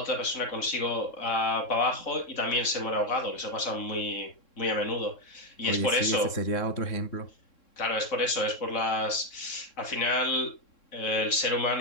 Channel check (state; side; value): late; right; 3.7 ms